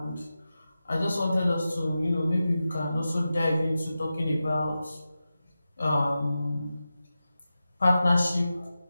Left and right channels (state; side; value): inverted; both; correlation -0.93